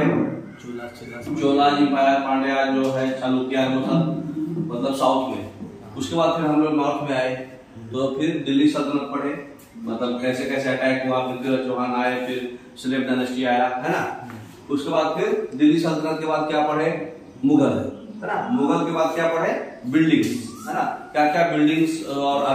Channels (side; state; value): both; identical; correlation 1.00